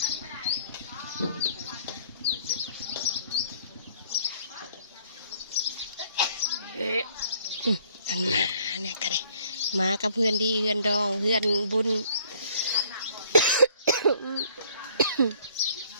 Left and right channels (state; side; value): inverted; both; correlation -0.59